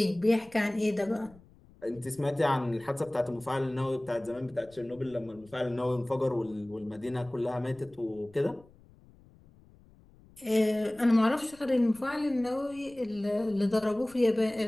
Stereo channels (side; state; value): left; noise; rumble, 26 dB below the sound